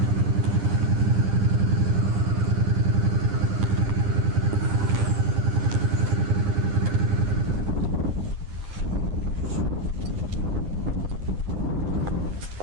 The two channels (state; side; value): late; left; 9.9 ms